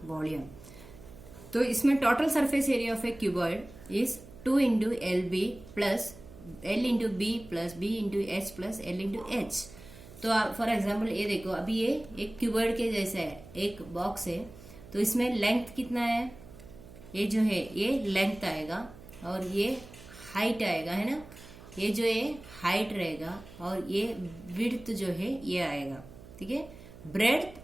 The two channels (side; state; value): right; noise; hum, 18 dB below the sound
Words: volume. तो इसमें total surface area of a cuboid is 2 into LB plus L into B plus B into H plus L into H. तो for example ये देखो, अभी ये एक क्यूबॉइड के जैसा है, एक बॉक्स है, तो इसमें लेंथ कितना है? ये जो है ये लेंथ आएगा और ये हाइट आएगा, है ना। ये जो है हाइट रहेगा और ये विड्थ जो है ये आएगा, ठीक है। ब्रेड्थ,